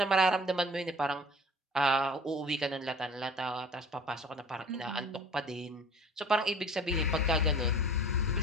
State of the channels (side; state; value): both; normal; correlation 0.46